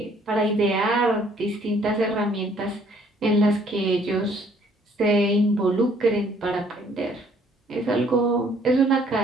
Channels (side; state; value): both; normal; correlation 0.62